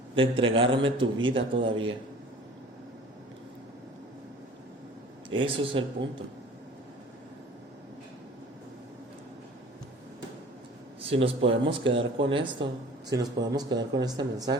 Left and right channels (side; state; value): both; normal; correlation 0.45